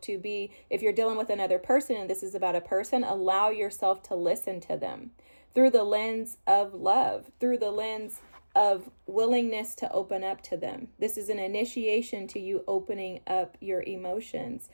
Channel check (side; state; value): both; inverted; correlation -1.00